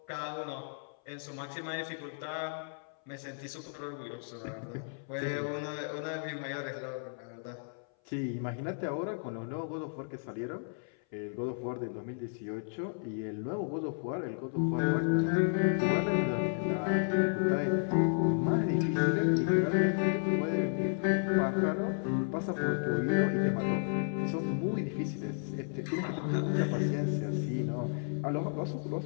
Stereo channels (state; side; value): silent; right; 56 dB below the other